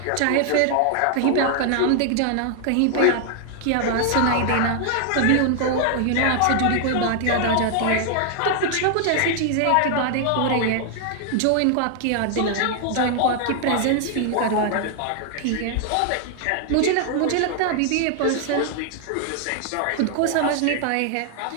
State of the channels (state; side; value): different; both; correlation 0.00